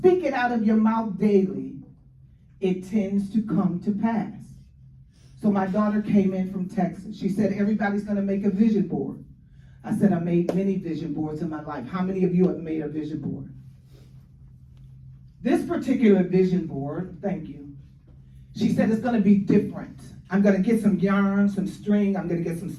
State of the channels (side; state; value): both; identical; correlation 1.00